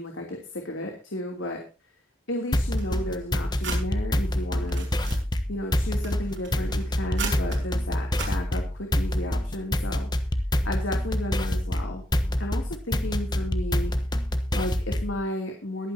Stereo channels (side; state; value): both; normal; correlation 0.79